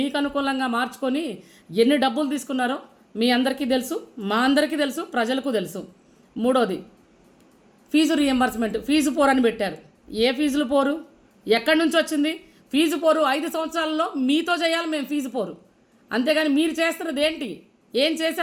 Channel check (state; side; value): identical; both; correlation 1.00